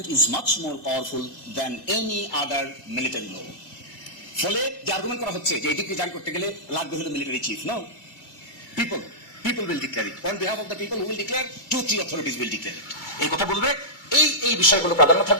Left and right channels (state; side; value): late; right; 2.3 ms